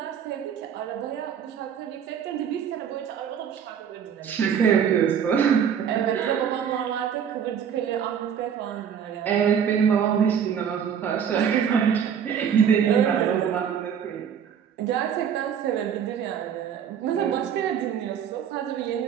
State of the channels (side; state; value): left; quieter; 8.1 dB